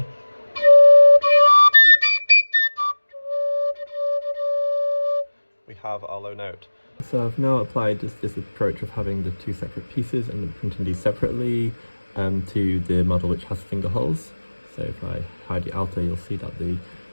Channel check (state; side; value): inverted; both; correlation -1.00